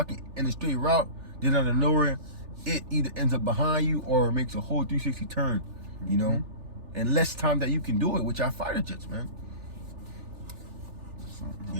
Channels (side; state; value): left; late; 3.4 ms